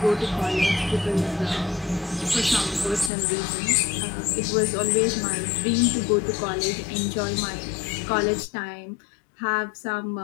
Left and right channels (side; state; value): right; drops out; at 3.1 s